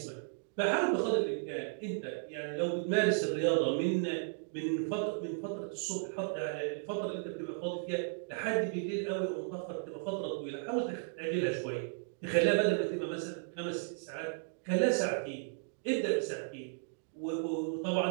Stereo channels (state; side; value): silent; left; digital silence